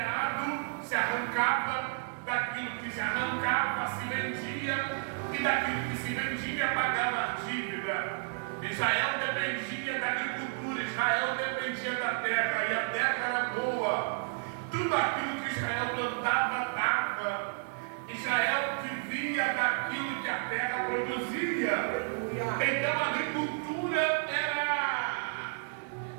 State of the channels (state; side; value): silent; left; digital silence